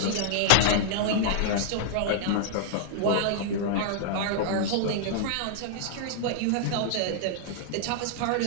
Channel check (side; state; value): both; different; correlation -0.01